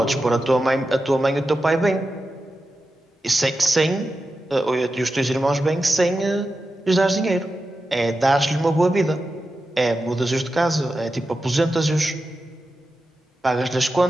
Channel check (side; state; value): both; normal; correlation 0.91